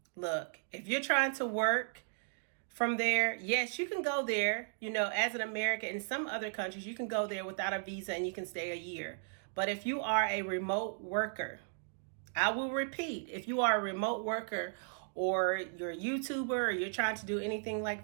look, if you're trying to work from there, yes, you can go there, as an American. In some other countries, you can go there without a visa and you can stay a year. But if you are a remote worker, I will repeat, if you are a remote worker, or you're a YouTuber, or you're trying to do anything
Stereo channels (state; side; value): silent; left; digital silence